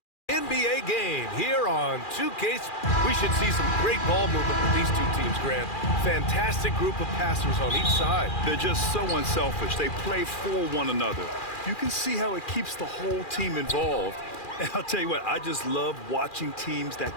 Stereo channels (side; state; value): right; late; 2.4 ms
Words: NBA game here on 2K. We should see some great ball movement with these two teams, Grant. Fantastic group of passers on each side. They're just so unselfish. They play for one another. You can see how it keeps the whole team involved. And I'll tell you what, I just love watching teams